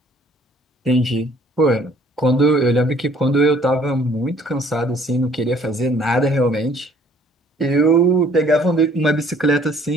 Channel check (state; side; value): normal; both; correlation 0.59